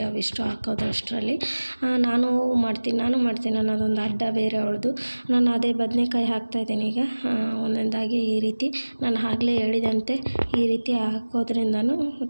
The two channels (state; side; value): inverted; both; correlation -1.00